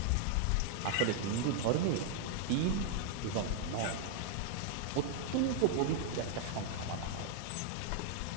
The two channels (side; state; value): both; different; correlation -0.01